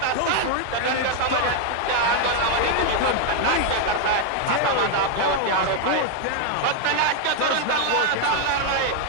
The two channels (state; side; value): different; both; correlation 0.01